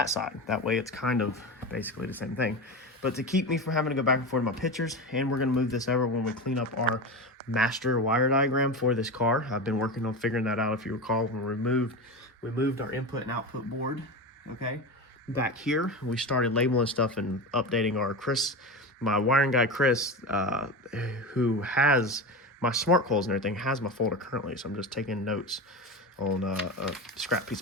side. That way it's kind of basically the same thing. But to keep me from having to go back and forth in my pictures, and we're going to move this over when we clean up our master wire diagram for this car. I've been working on figuring that out. If you recall, when we moved our input and output board, okay, back here, we started labeling stuff and updating our CRC my wiring guy, Chris, who has my smart coils and everything, has my folder currently. So I'm just taking notes on a scrap piece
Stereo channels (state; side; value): normal; both; correlation 0.23